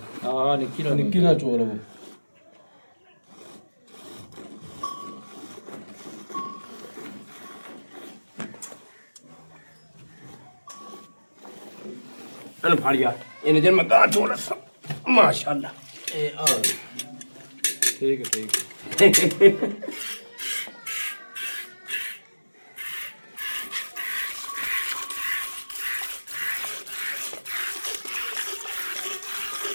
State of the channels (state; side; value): inverted; both; correlation -1.00